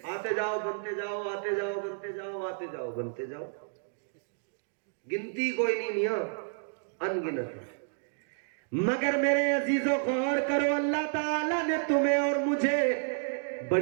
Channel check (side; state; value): left; silent; digital silence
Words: آتے جاؤ بنتے جاؤ، آتے جاؤ بنتے جاؤ، آتے جاؤ بنتے جاؤ، گنتی کوئی نہیں میاں، ان گنت ہے۔ مگر میرے عزیزو غور کرو، اللہ تعالیٰ نے تمہیں اور مجھے